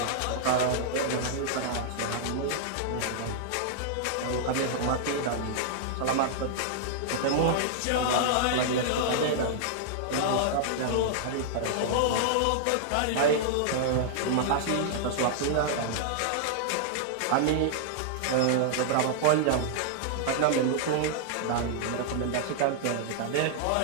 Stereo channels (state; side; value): different; both; correlation -0.01